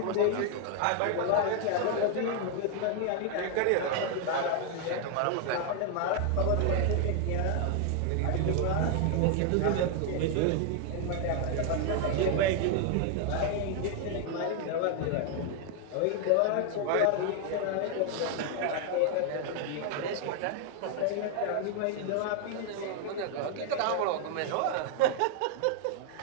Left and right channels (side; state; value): both; different; correlation 0.00